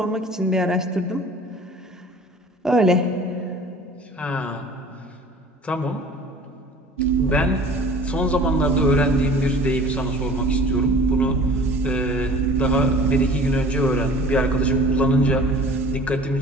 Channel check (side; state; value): both; normal; correlation 0.45